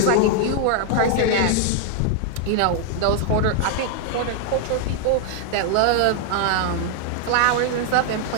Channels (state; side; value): different; both; correlation 0.00